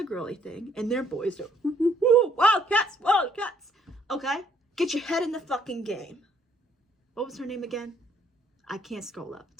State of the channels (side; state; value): both; normal; correlation 0.66